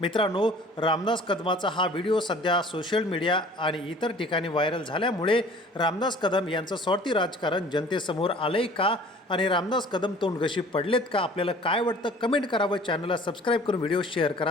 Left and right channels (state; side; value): normal; both; correlation 0.49